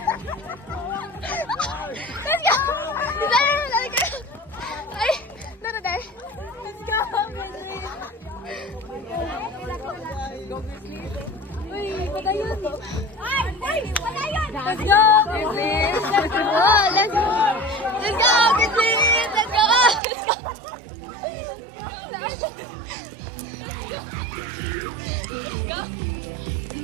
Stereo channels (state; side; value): drops out; left; at 20.0 s